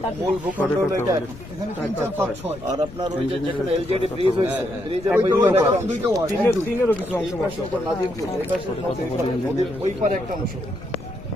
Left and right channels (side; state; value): left; noise; rumble, 15 dB below the sound